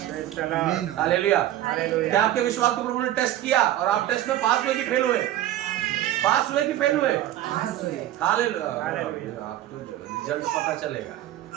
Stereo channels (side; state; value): left; quieter; 13.3 dB